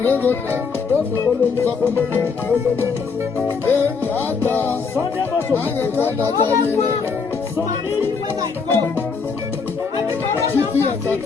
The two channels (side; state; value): right; quieter; 5.2 dB